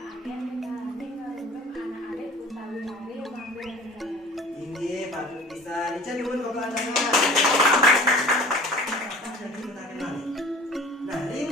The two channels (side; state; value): both; normal; correlation 0.45